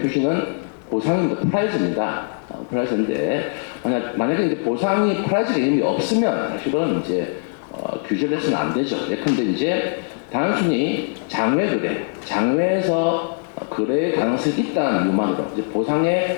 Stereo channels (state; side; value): silent; right; 65 dB below the other